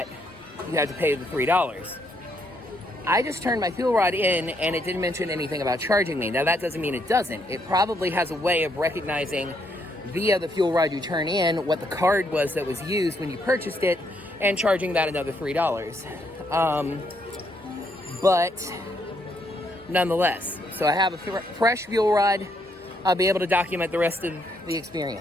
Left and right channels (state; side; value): normal; both; correlation 0.74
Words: you had to pay the $3. I just turned my fuel rod in and it didn't mention anything about charging me. Now that doesn't mean it doesn't. It probably has a way of recognizing via the fuel rod you turn in what the card was that was used when you purchased it and charging that another $3. But nonetheless, so I have a fresh fuel rod. I'll be able to document the rest of the